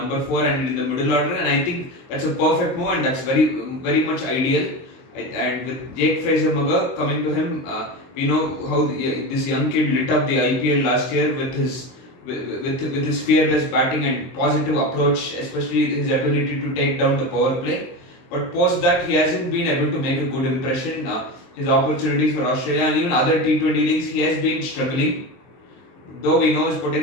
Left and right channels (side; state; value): right; late; 23 ms